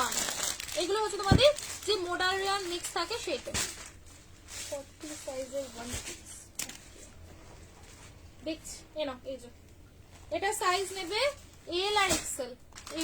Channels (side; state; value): both; identical; correlation 1.00